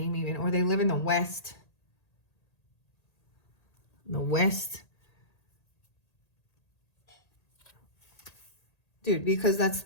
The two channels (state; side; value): late; right; 1.8 ms